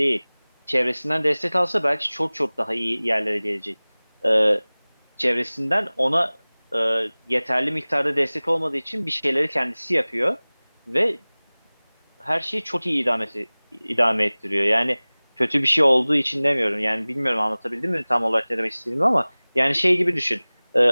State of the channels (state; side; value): inverted; both; correlation -1.00